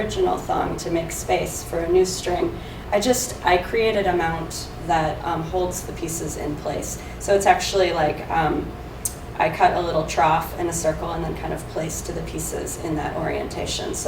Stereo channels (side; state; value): both; identical; correlation 1.00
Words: thong to make space for a new string, I created a mount that holds the pieces in place. So it's actually I cut a little trough in a circle and then kind of placed the pieces in that orientation.